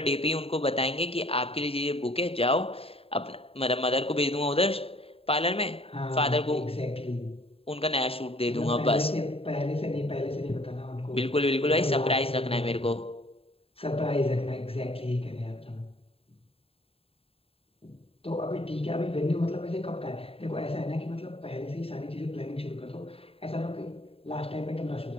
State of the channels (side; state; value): right; late; 0.27 ms